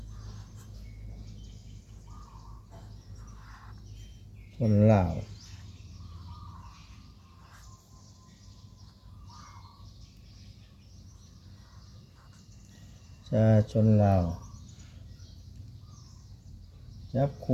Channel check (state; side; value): identical; both; correlation 1.00